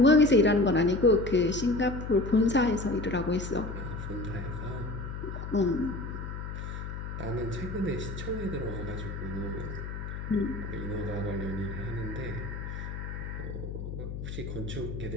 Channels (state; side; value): noise; left; hum, 7 dB below the sound